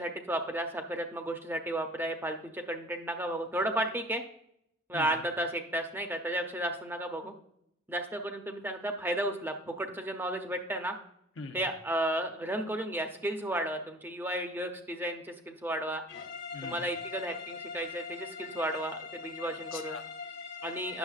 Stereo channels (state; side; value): normal; both; correlation 0.45